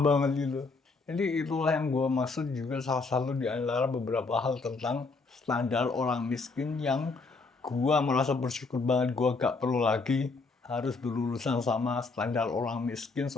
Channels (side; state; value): right; quieter; 4.0 dB